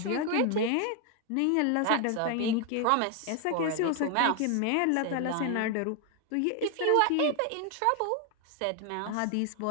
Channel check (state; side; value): different; both; correlation 0.01